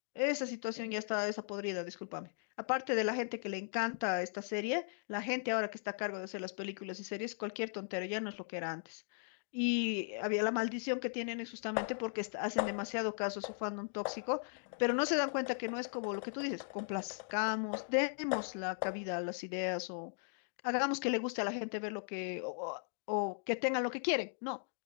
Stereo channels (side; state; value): right; silent; digital silence